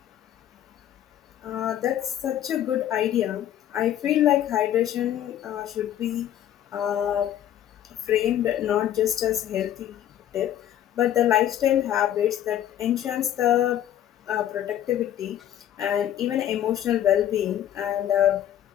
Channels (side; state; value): right; quieter; 11.2 dB